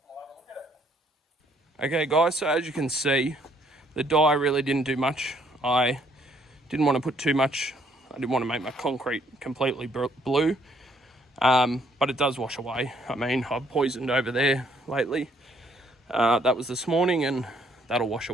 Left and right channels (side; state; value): both; normal; correlation 0.67